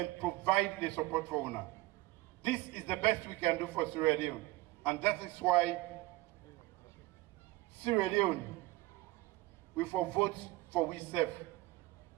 provide the support for UNA. This is the best we can do for Sierra Leone. And that is why Sierra Leone we for vote for we self.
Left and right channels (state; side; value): quieter; left; 19.2 dB